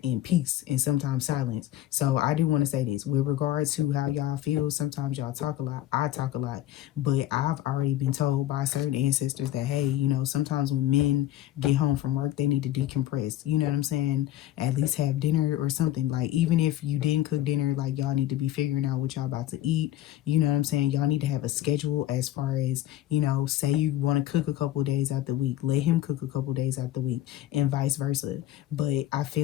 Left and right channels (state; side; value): quieter; right; 13.6 dB